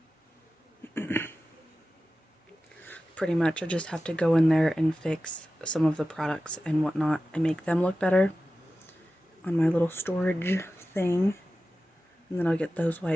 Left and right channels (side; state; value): both; normal; correlation 0.94